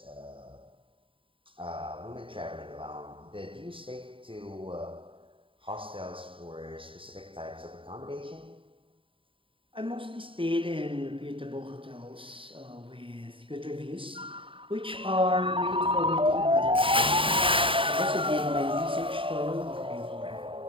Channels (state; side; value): late; left; 0.25 ms